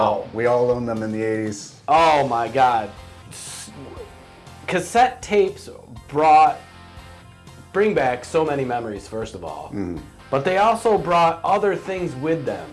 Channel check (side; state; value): both; identical; correlation 1.00